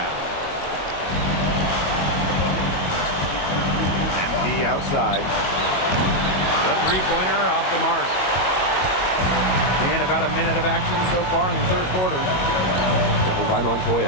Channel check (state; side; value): late; right; 22 ms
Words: MP outside. The three-pointer off the mark. And about a minute of action so far in the third quarter. Doubled by